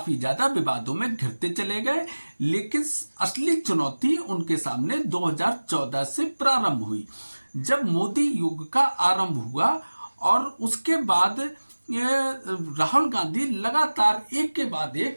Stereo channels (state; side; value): inverted; both; correlation -1.00